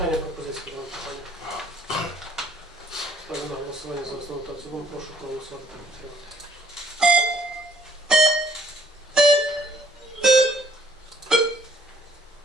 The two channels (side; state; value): both; normal; correlation 0.61